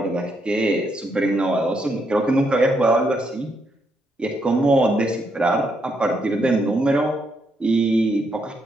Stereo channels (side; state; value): both; normal; correlation 0.77